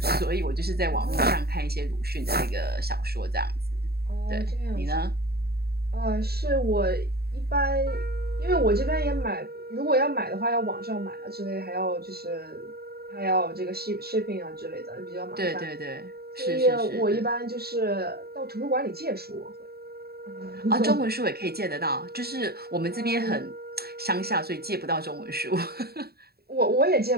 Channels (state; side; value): late; left; 0.46 ms